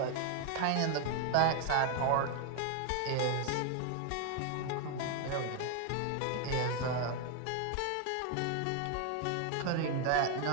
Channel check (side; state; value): both; different; correlation 0.01